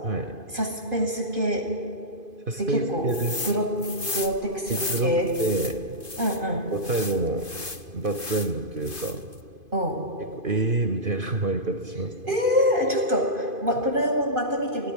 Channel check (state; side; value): late; left; 2.5 ms